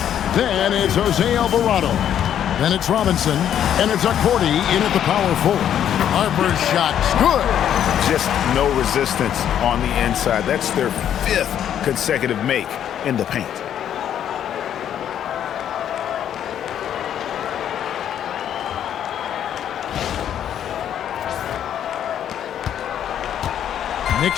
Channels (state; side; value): quieter; right; 9.9 dB